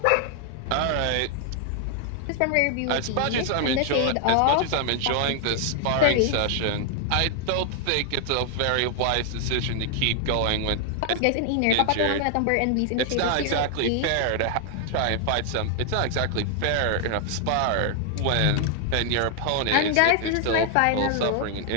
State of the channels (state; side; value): different; both; correlation 0.00